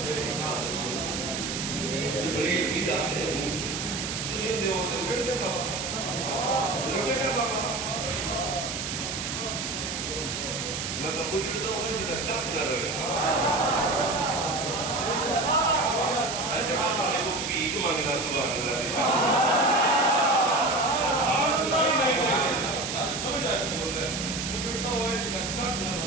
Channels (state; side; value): noise; right; hiss, 4 dB below the sound